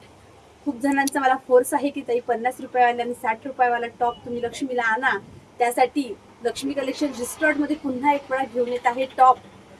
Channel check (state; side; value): identical; both; correlation 1.00